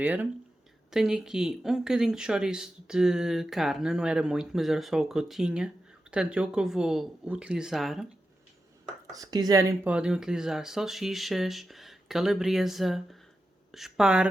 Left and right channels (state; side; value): normal; both; correlation 0.90